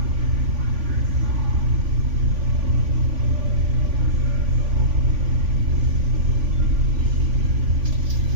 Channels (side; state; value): left; late; 3.5 ms